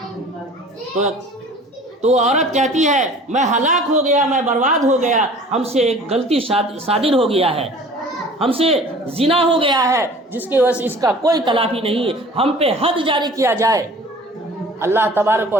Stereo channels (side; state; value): both; normal; correlation 0.46